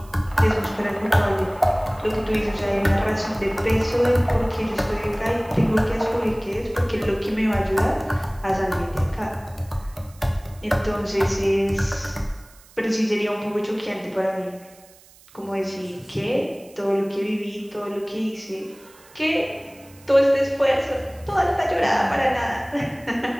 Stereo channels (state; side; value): noise; right; hiss, 25 dB below the sound